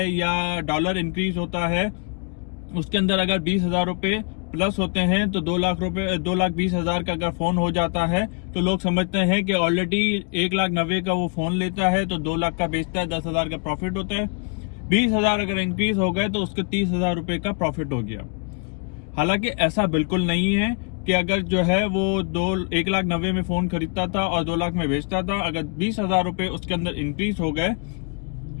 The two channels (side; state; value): right; quieter; 37.5 dB